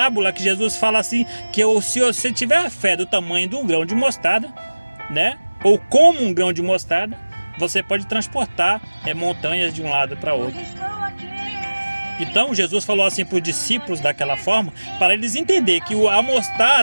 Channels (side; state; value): both; inverted; correlation -1.00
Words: que Jesus fala assim, que se você tiver a fé do tamanho de um grão de mostarda, né, ou como um grão de mostarda, você pode transportar montanhas de um lado para outro. Então Jesus falou assim para os discípulos daquela forma, para eles entenderem que a